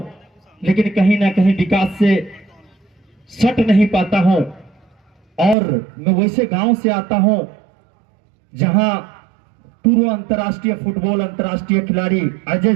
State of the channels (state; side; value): drops out; left; at 5.6 s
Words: लेकिन कहीं ना कहीं विकास से सट नहीं पाता हूं। और मैं वैसे गांव से आता हूं जहां पूर्व अंतर्राष्ट्रीय फुटबॉल अंतर्राष्ट्रीय खिलाड़ी अजय